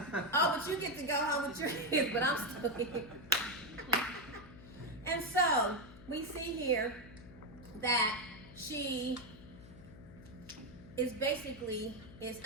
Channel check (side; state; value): left; noise; hum, 18 dB below the sound